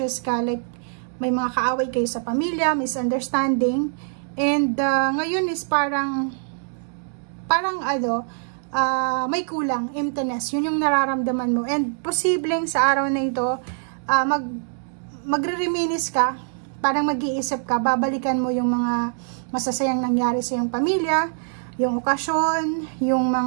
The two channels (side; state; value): left; silent; digital silence